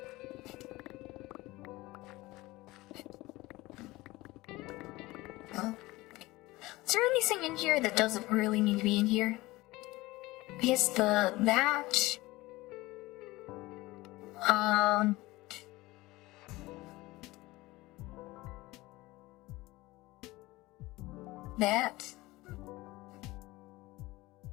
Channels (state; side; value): quieter; right; 19.9 dB